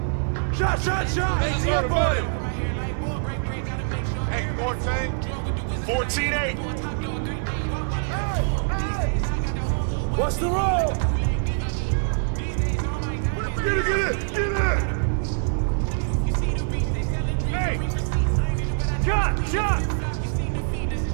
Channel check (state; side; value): silent; left; digital silence